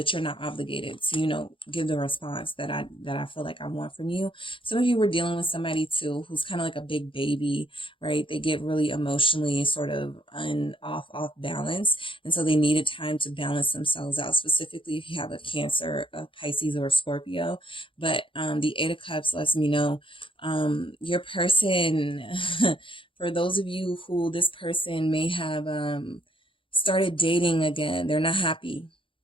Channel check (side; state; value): right; late; 0.25 ms